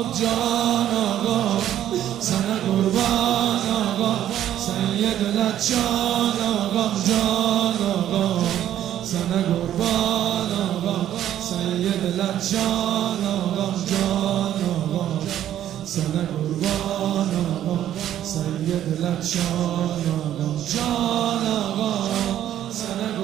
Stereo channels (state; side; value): quieter; left; 11.5 dB